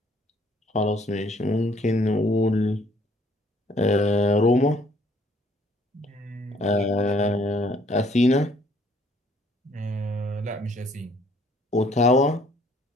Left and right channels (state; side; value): normal; both; correlation 0.62